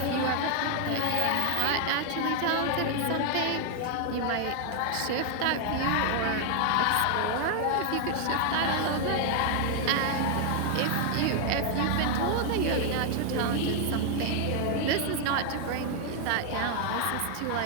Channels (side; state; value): both; different; correlation 0.00